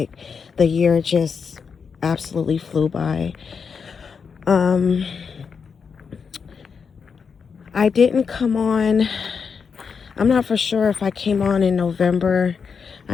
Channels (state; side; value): quieter; right; 5.9 dB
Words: the year just absolutely flew by. I didn't come on, I'm not for sure if I came on in November.